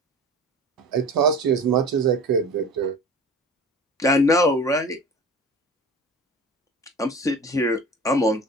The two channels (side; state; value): both; normal; correlation 0.38